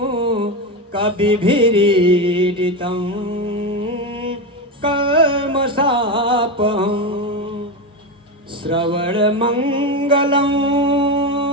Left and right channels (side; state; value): both; normal; correlation 0.16